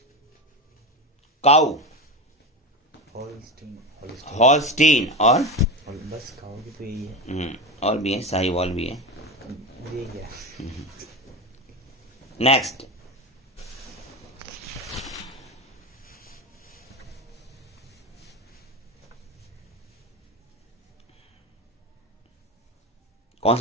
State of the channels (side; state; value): both; normal; correlation 0.20